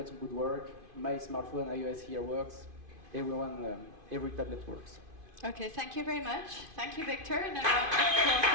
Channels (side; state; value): left; late; 2.5 ms